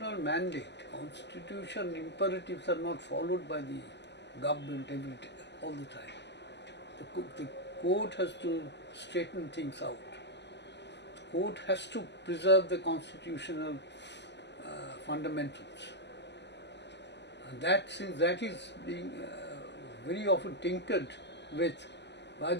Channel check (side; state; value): right; late; 0.50 ms